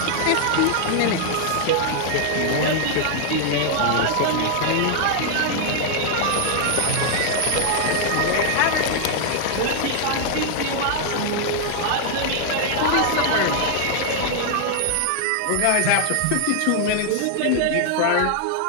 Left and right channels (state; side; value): different; both; correlation 0.00